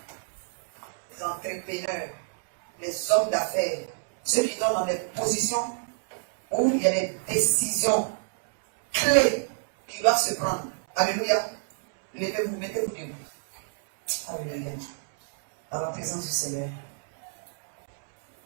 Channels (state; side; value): silent; left; 60 dB below the other